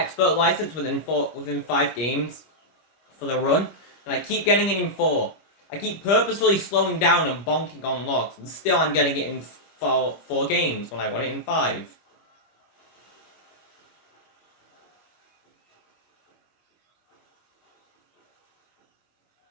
license within 5 games for the run, and I keep getting it in 4. I keep purposefully slowing down and bonking on logs, and still I'm getting it in 4 games when I want it in 5.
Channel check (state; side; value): late; right; 25 ms